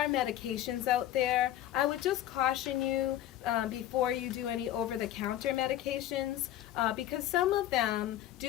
medications out there. I would just caution you before you do any over-the-counter medications, because some of them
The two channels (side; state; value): right; quieter; 12.7 dB